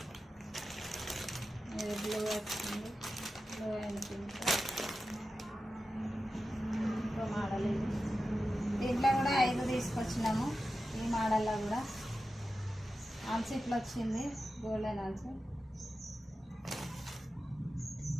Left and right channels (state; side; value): normal; both; correlation 0.92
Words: ఇది బ్లూ వచ్చింది, బ్లూ అండ్ పింక్. ఇంకో మోడల్ ఇది. దీంట్లో కూడా 5 తీసుకొచ్చినాము. ఈ మోడల్లో కూడా ఆల్స్ ఇట్లా వచ్చింది, గోల్డెన్ ఆల్స్.